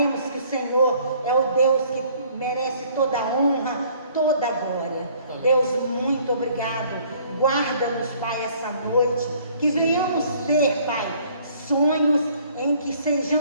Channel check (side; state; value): both; inverted; correlation -0.58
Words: que o Senhor é o Deus que merece toda a honra, toda a glória. Amém. Deus, muito obrigado. Guarda-nos, Pai, essa noite, que venhamos ter, Pai, sonhos em que